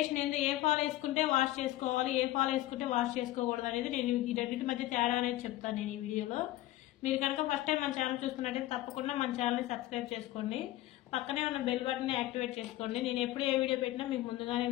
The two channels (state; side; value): quieter; right; 16.0 dB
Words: ఏంది, ఏ ఫాల్ వేసుకుంటే వాష్ చేసుకోవాలి, ఏ ఫాల్ వేసుకుంటే వాష్ చేసుకోకూడదు అనేది నేను ఈ రెండింటి మధ్య తేడా అనేది చెప్తాను నేను ఈ వీడియోలో. మీరు కనుక ఫస్ట్ టైం మన ఛానల్ చూస్తున్నట్టయితే తప్పకుండా మన ఛానల్ని సబ్స్క్రైబ్ చేసుకోండి, పక్కనే ఉన్న బెల్ బటన్ని యాక్టివేట్ చేసుకోండి. నేను ఎప్పుడు ఏ వీడియో పెట్టినా మీకు ముందుగానే